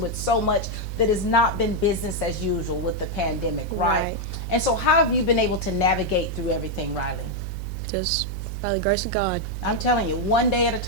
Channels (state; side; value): noise; right; hum, 5 dB below the sound